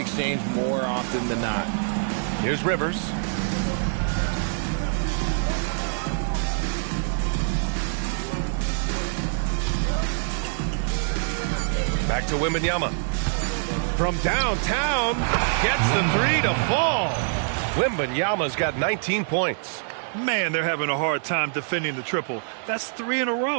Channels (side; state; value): left; silent; digital silence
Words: more often than not. Here's Rivers. Back to Wembanyama. From downtown, gets the 3 to fall. Wembanyama's got 19 points. Man, they're having a hard time defending the triple. That's 3 in a